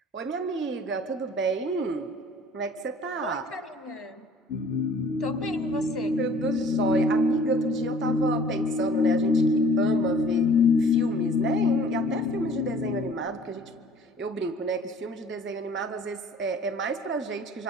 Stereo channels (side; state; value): both; normal; correlation 0.51